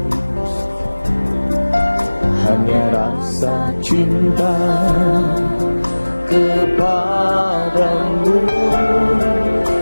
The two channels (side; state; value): both; inverted; correlation -1.00